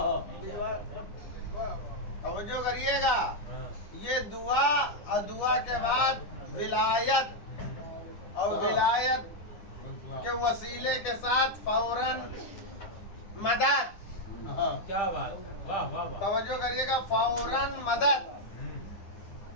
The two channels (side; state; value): right; late; 9.9 ms